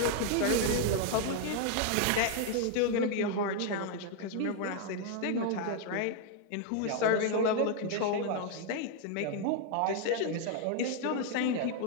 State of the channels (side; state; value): both; different; correlation 0.00